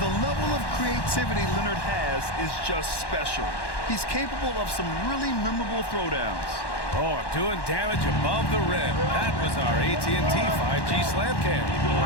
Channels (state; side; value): late; right; 1.1 ms